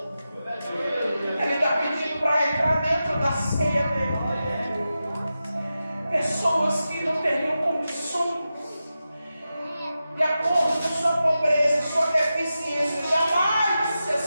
Ele está pedindo para entrar dentro da ceia dele. Pessoas que não teriam condições, de acordo com sua pobreza, sua deficiência, jamais se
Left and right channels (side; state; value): both; inverted; correlation -0.92